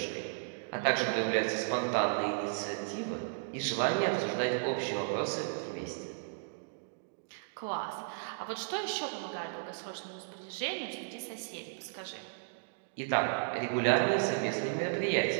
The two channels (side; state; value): left; silent; digital silence